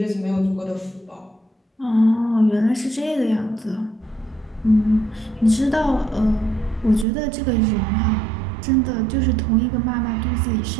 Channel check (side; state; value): left; drops out; at 7.1 s